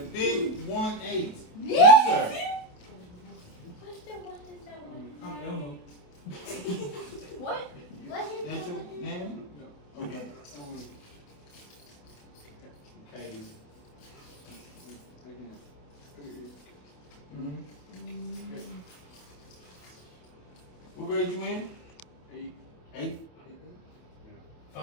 big 1-8. Yes, sir. I don't know. What? That's your name? Okay. Hey. What grade you in? 8. 8th?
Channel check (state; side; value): late; right; 28 ms